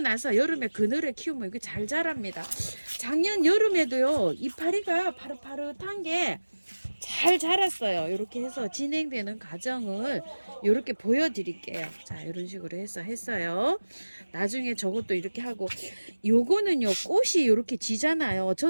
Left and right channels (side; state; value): both; inverted; correlation -1.00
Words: 여름에 그늘에 키우면 이게 잘 자랍니다. 작년 여름에도요 이파리가 파릇파릇한 게 잘 자랐어요. 이렇게 해서 진행되는 과정을 이렇게 보여드릴게요. 자, 이런 식으로 해서 했어요. 나중에 저것도 이렇게 하고, 요거는요 꽃이 이렇게 지잖아요.